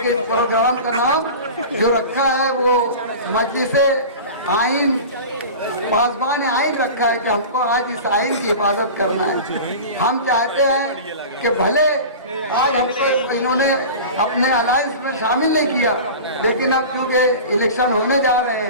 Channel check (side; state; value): both; inverted; correlation -0.34